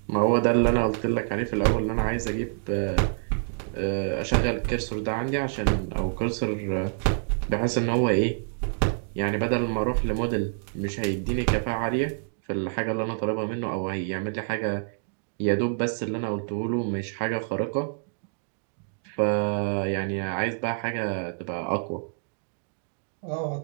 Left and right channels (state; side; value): silent; left; digital silence